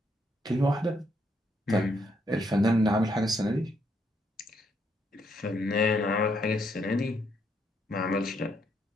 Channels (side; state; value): both; normal; correlation 0.74